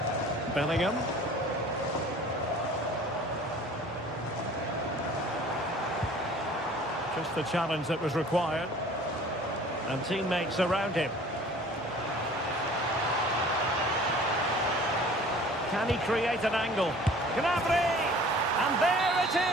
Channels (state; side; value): normal; both; correlation 0.48